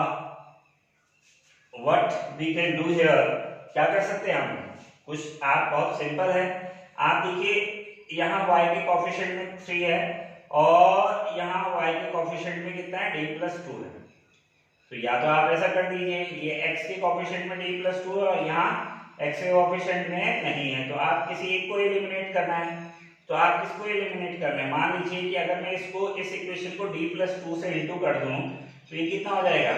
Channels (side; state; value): both; identical; correlation 1.00